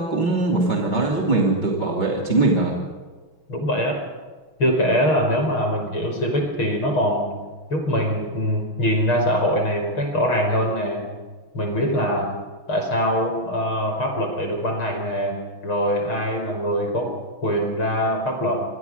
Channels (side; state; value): right; late; 6.3 ms